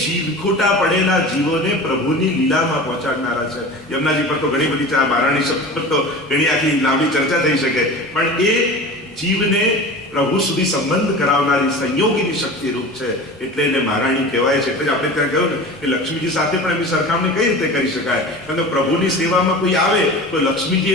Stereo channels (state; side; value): normal; both; correlation 0.35